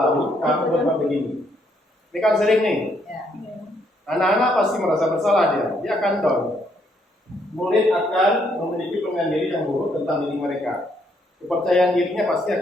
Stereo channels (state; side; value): normal; both; correlation 0.72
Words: kamu berbuat begini? Ini kan sering nih. Anak-anak pasti merasa bersalah dia akan down. Murid akan memiliki penilaian diri yang buruk tentang diri mereka. Kepercayaan dirinya pasti